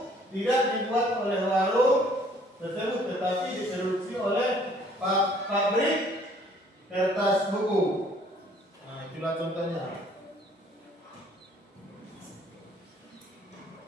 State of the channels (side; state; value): both; normal; correlation 0.59